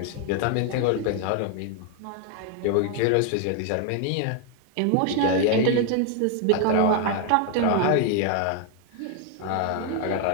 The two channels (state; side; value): different; both; correlation 0.00